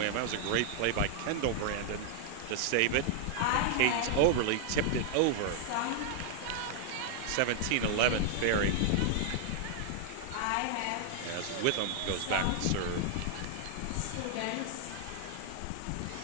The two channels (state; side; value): different; both; correlation 0.00